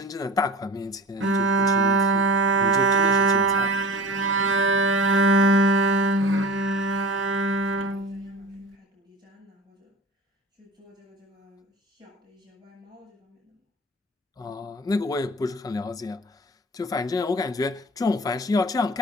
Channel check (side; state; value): both; normal; correlation 0.37